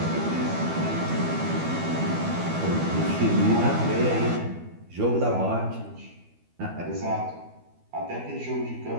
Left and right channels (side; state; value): left; late; 12 ms